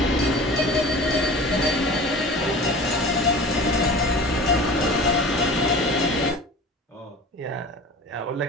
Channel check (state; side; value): normal; both; correlation 0.39